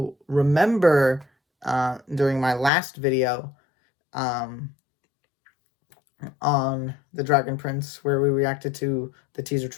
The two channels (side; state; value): right; drops out; at 2.7 s